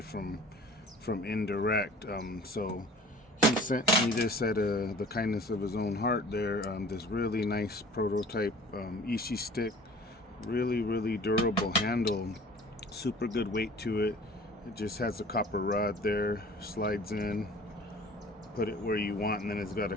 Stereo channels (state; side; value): normal; both; correlation 0.47